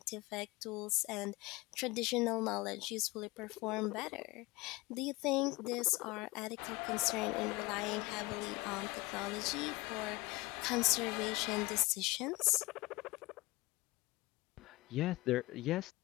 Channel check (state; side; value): quieter; right; 21.9 dB